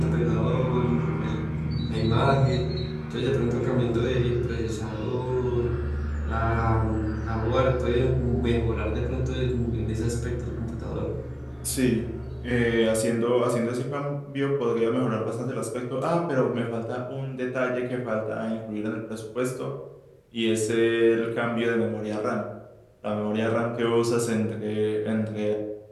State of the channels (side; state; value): both; identical; correlation 1.00